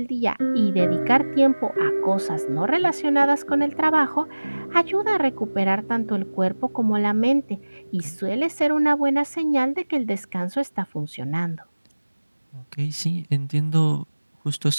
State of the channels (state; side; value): inverted; both; correlation -1.00